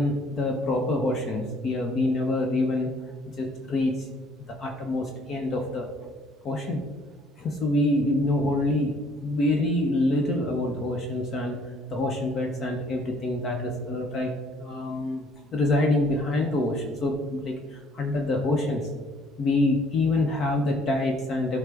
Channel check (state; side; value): normal; both; correlation 0.61